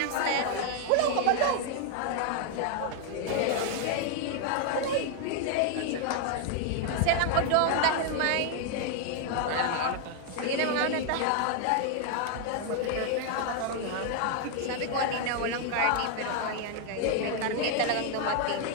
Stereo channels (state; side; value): different; both; correlation 0.00